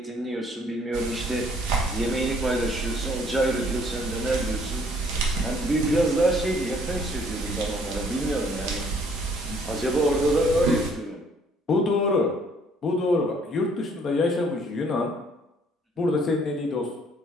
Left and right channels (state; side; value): normal; both; correlation 0.62